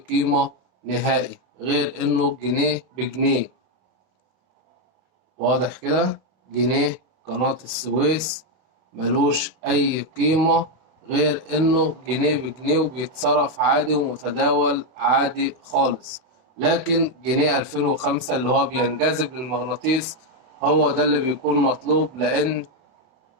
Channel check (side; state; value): left; late; 31 ms